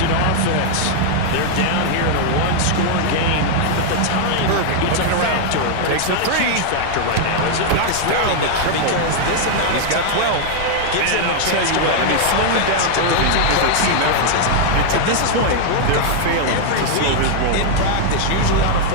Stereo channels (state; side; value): different; both; correlation 0.00